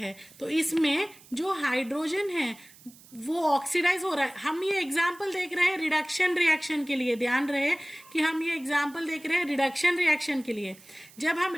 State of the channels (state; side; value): noise; right; hiss, 23 dB below the sound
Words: तो इसमें जो हाइड्रोजन है वो ऑक्सीडाइज हो रहा है। हम ये एग्जाम्पल देख रहे हैं रिडक्शन रिएक्शन के लिए, ध्यान रहे कि हम ये एग्जाम्पल देख रहे हैं रिडक्शन रिएक्शन के लिए। जब हम